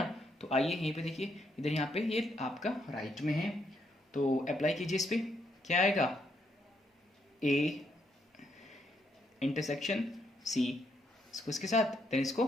तो आइए यहीं पे देखिए, इधर यहाँ पे ये आपका राइट में है, तो अप्लाई कीजिए इस पे। क्या आएगा, ए इंटरसेक्शन सी, इसको इसके साथ देन इसको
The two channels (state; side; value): normal; both; correlation 0.76